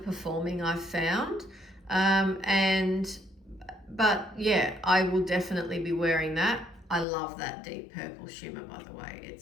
I've found. But yeah, I will definitely be wearing that. I love that deep purple shimmer, by the way.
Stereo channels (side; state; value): right; drops out; at 7.1 s